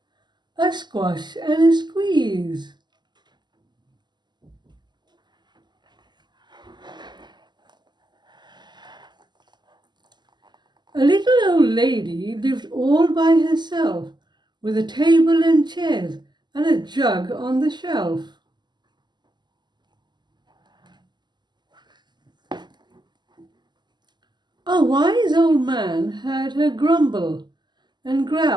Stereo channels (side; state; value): left; late; 0.21 ms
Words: A Squash and a Squeeze. A little old lady lived all by herself, with a table and chairs and a jug on the shelf. A wise old man heard her grumble and